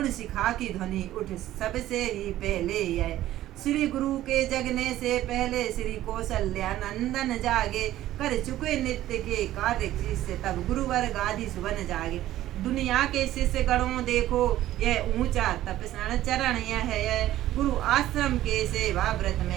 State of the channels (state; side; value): quieter; left; 14.0 dB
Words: शिखा की ध्वनि उठ सबसे ही पहले यह। श्री गुरु के जगने से पहले श्री कौशल्या नंदन जागे, कर चुके नित्य के कार्य शिष्य तब गुरुवर गादी सुबन जागे। दुनिया के शिष्य गणों देखो यह ऊंचा तपस्या चरण यह है, गुरु आश्रम के सेवा व्रत